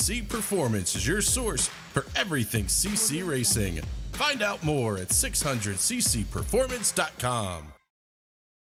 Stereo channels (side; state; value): both; identical; correlation 1.00